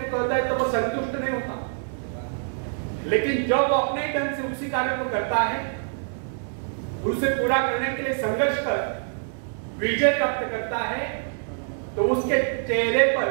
कहता है तो वो संतुष्ट नहीं होता, लेकिन जब वो अपने ढंग से उसी कार्य को करता है, उसे पूरा करने के लिए संघर्ष कर विजय प्राप्त करता है, तो उसके चेहरे पर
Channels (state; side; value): silent; left; 61 dB below the other